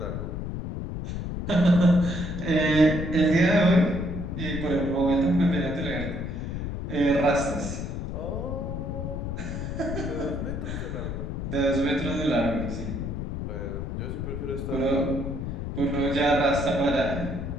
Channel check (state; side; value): noise; left; rumble, 4 dB below the sound